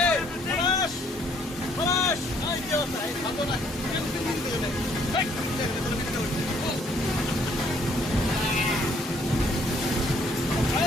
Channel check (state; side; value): normal; both; correlation 0.64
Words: কি অবস্থা? এই ভালো না,